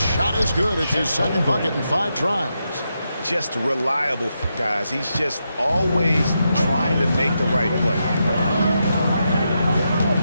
is good. It's his second bucket in 5 tries. Just reliable, guys. He's just always trying to make the right play.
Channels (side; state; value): both; inverted; correlation -0.85